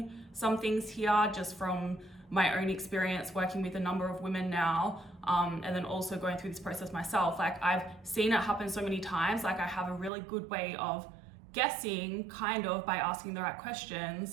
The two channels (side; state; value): left; drops out; at 10.1 s